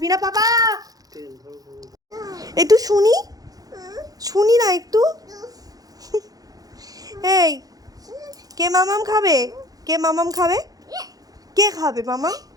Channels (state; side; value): late; left; 0.18 ms